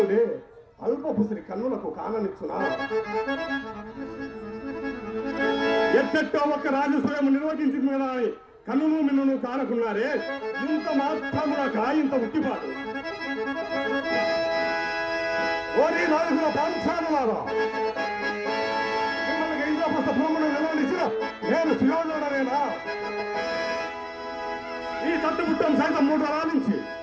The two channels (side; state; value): both; identical; correlation 1.00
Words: అల్పపుసిరి కన్నులకు కాననిచ్చునా? ఎట్టెట్టో ఒక్క రాజస్వయం నిర్వహించింది కదా అని కన్నును మిన్నును కానకున్నారే, ఇంత మాత్రమునక ఇంత ఉట్టిపాటు. ఓరి నాలుగుల పాంచానులారా, మిమ్మల్ని ఇంద్రప్రస్థ భూమును నిలవనిచ్చిన నేను సుయోధనుడనేనా? ఈ తట్టుబుట్టం సైతం 3 తరాల నుంచి